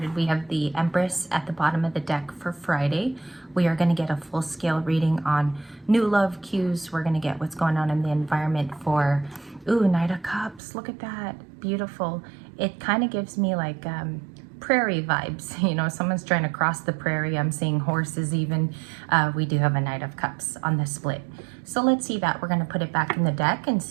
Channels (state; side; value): drops out; left; at 10.6 s